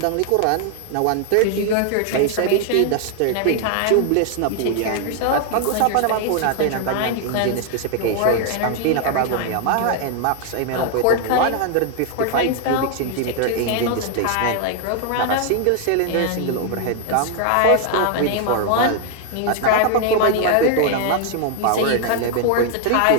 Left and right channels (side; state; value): both; different; correlation 0.00